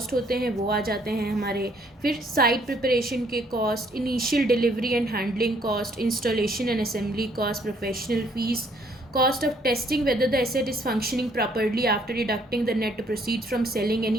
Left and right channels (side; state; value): both; normal; correlation 0.65